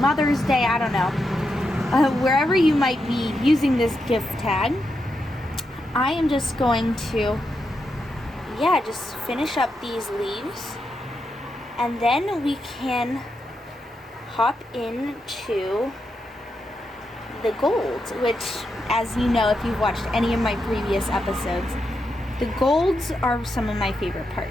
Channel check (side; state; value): both; normal; correlation 0.84